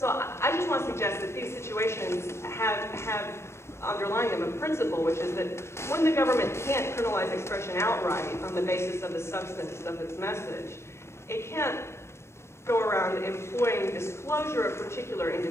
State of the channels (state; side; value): late; right; 0.13 ms